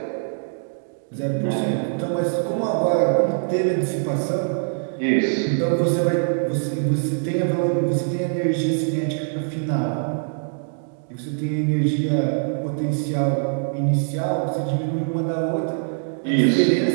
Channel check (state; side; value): silent; left; digital silence